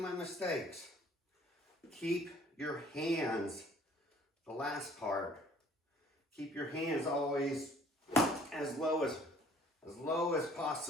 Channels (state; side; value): normal; both; correlation 0.55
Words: mistakes. Keep your hands, the last part, keep your hands always as low as